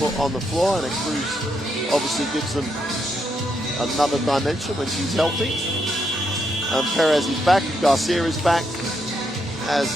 on the floor, and Cruz obviously gives them another dimension when she's healthy. And Perez is back, Garcia is back,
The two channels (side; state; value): both; normal; correlation 0.79